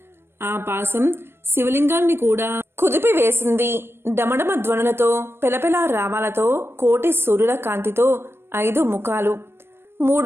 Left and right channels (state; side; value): late; left; 0.12 ms